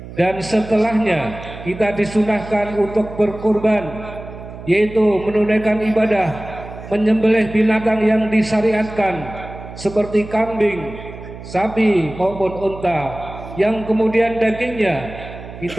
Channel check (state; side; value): noise; right; hum, 13 dB below the sound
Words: dan setelahnya kita disunahkan untuk berkurban, yaitu menunaikan ibadah menyembelih binatang yang disyariatkan seperti kambing, sapi maupun unta, yang kemudian dagingnya